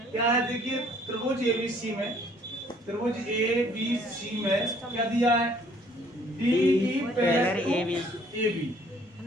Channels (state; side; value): normal; both; correlation 0.60